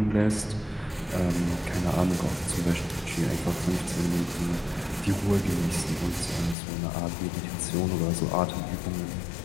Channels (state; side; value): drops out; right; at 6.6 s